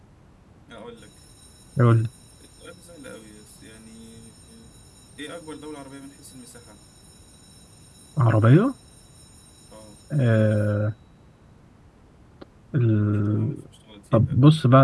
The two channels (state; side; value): identical; both; correlation 1.00